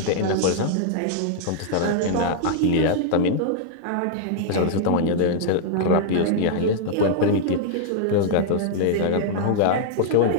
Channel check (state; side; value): different; both; correlation -0.01